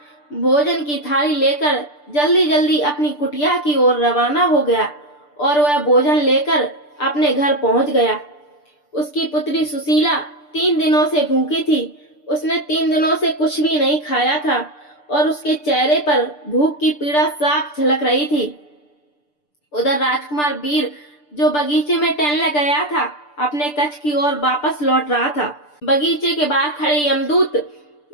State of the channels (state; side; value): late; right; 6.8 ms